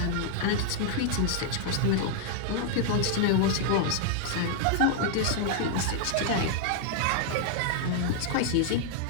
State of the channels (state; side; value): different; both; correlation -0.01